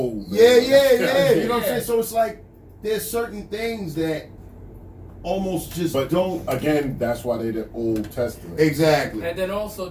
man. yeah. You know what I'm Yeah. saying? So it's like there's certain things that almost just But don't. again, that's why they the Old Testament. Exactly. And then also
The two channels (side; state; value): both; identical; correlation 1.00